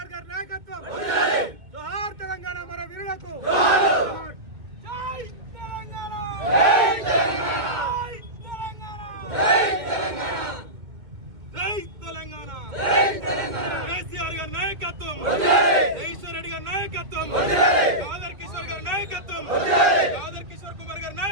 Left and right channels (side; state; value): left; late; 2.1 ms